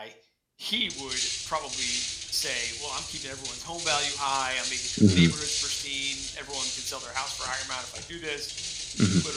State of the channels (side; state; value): both; identical; correlation 1.00